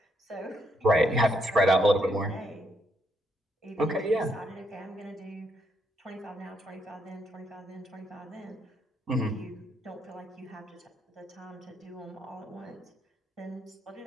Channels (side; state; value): both; normal; correlation 0.75